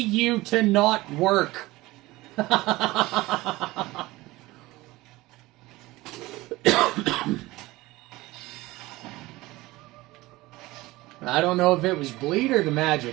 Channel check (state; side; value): quieter; left; 19.6 dB